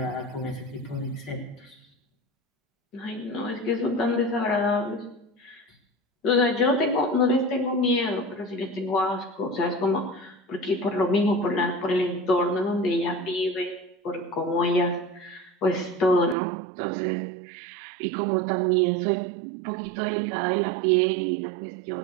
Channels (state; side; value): drops out; left; at 16.4 s